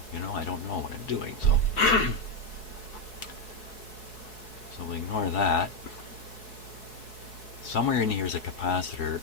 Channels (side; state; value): right; late; 4.7 ms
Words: I don't know what I'm doing, so so we ignore that. Somewhere in here is a capacitor